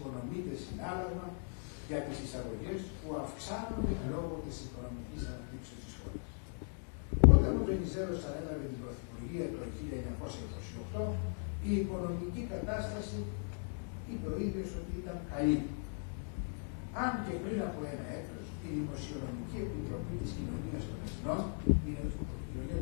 συνάλλαγμα για τις εισαγωγές που αυξάνονται λόγω της οικονομικής αναπτύξεως της χώρας. Όταν ο Βενιζέλος ανέλαβε την πρωθυπουργία το 1928, η οικονομική κατάσταση είπε ο ίδιος ότι ήταν καλή. Αν και πριν από ένα έτος, η Δημοσιονομική Επιτροπή της Κοινωνίας των Εθνών, η Κοινωνία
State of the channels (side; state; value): right; silent; 52 dB below the other